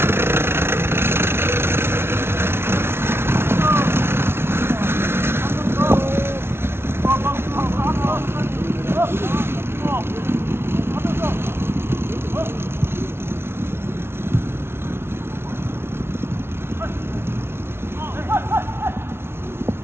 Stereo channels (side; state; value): left; late; 0.12 ms